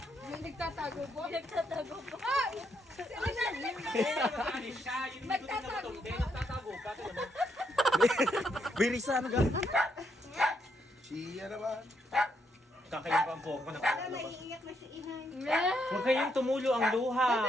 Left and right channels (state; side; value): normal; both; correlation 0.76